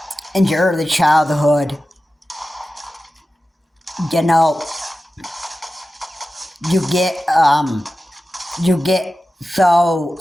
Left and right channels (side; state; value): both; normal; correlation 0.94